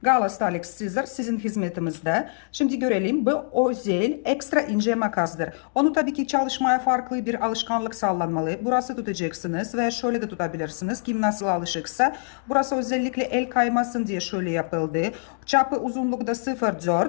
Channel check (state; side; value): silent; right; digital silence